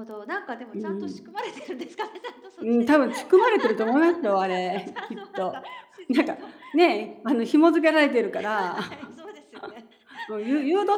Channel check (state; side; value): identical; both; correlation 1.00